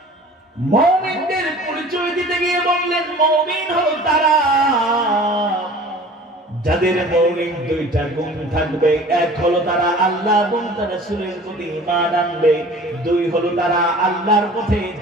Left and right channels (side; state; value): both; normal; correlation 0.45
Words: মুমিনদের বললেন মুমিন হলো তারা যাদের মৌলিক দুইটা গুণ থাকবে। এক হলো তারা আল্লাহ এবং তার রাসূলের প্রতি ঈমান আনবে, দুই হলো তারা আল্লাহর পথে